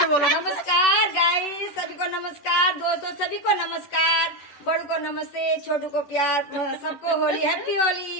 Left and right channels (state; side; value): late; right; 11 ms